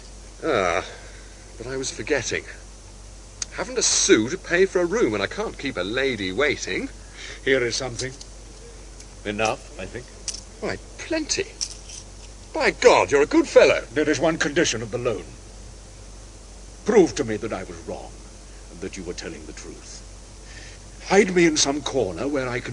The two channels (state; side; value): identical; both; correlation 1.00